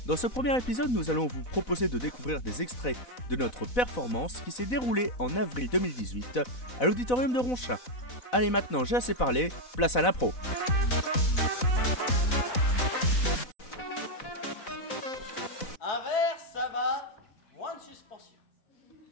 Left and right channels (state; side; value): late; right; 4.0 ms